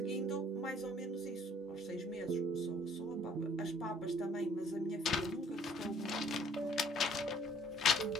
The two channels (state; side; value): normal; both; correlation 0.59